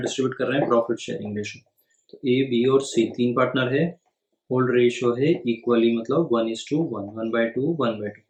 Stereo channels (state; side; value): identical; both; correlation 1.00